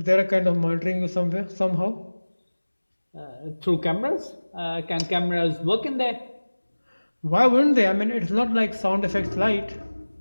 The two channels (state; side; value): inverted; both; correlation -1.00